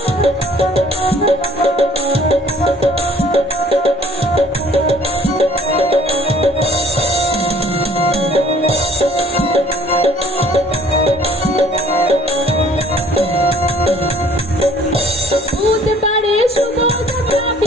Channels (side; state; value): both; normal; correlation 0.56